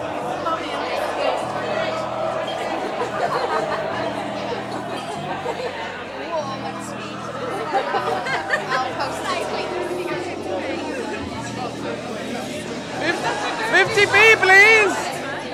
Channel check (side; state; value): both; identical; correlation 1.00